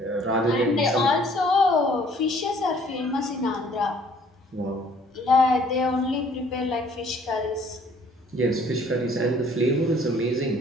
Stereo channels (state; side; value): normal; both; correlation 0.58